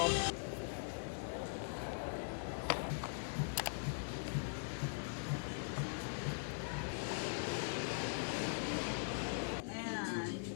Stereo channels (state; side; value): silent; right; digital silence